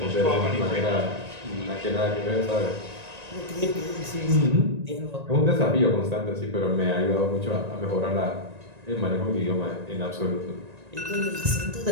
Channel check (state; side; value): late; left; 1.9 ms